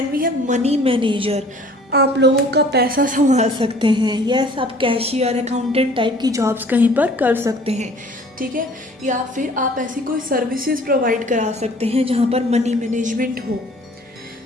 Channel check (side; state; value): both; normal; correlation 0.52